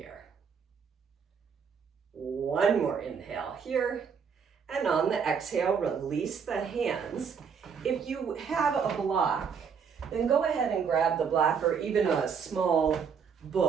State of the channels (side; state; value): left; quieter; 6.5 dB